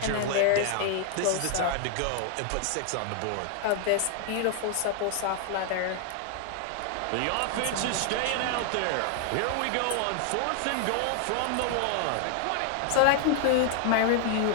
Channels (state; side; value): different; both; correlation 0.00